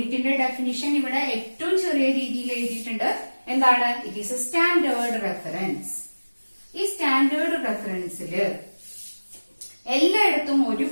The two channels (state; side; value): inverted; both; correlation -1.00